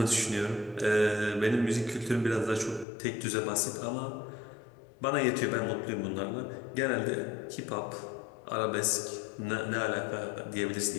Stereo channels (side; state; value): right; drops out; at 2.9 s